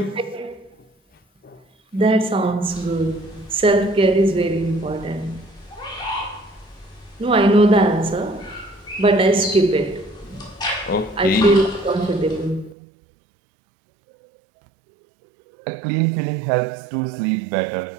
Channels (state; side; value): drops out; left; at 12.8 s